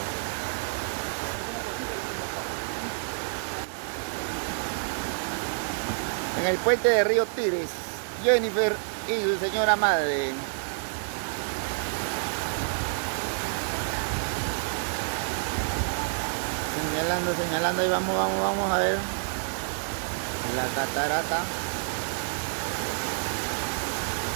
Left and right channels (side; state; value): left; silent; digital silence